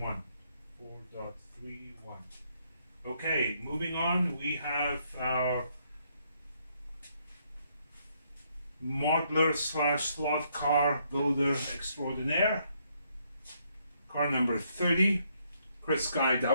Okay, moving on, we have our modeler / slot car builder extraordinaire, car number 30, Chris Guy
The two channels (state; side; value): inverted; both; correlation -0.72